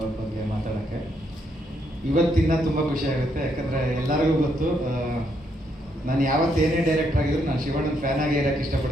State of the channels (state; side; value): normal; both; correlation 0.75